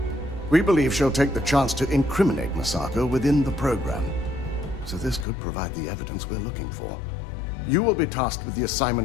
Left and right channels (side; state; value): right; drops out; at 5.2 s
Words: We believe she'll take the chance to incriminate Masako within the program, so this could provide the evidence we're looking for. You will be tasked with the